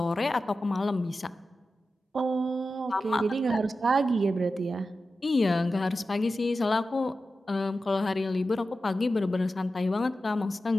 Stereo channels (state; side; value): normal; both; correlation 0.92